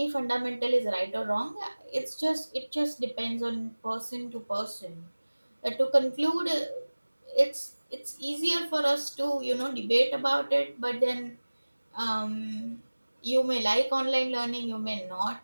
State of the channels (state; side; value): inverted; both; correlation -1.00